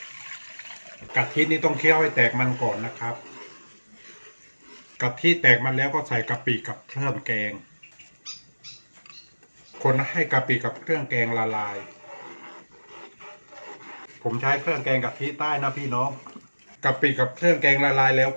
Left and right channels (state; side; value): inverted; both; correlation -1.00